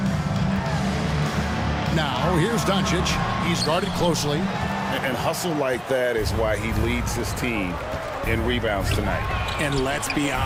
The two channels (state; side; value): identical; both; correlation 1.00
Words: Now, here's Doncic. He's guarded closely. And hustle like that is why he leads his team in rebounds tonight. And let's be